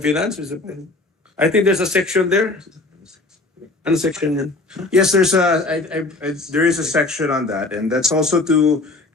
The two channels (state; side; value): quieter; right; 3.1 dB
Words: Finance. I think there's a section there. Ano section yan? Yes, there is a section on that, and that's also to